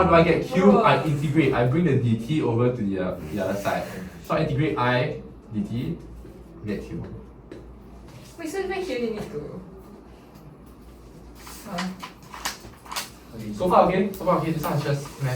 do I get Q? I integrate, I bring the dt over to the other side. So I integrate I dt, get Q. Wait, so make you need to. So far okay? So far okay, this one is just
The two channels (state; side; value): identical; both; correlation 1.00